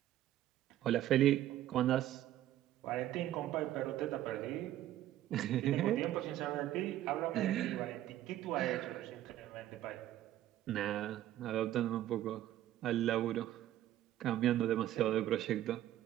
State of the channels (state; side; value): quieter; left; 13.2 dB